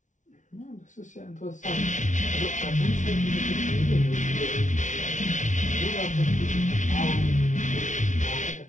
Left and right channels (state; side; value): late; right; 0.36 ms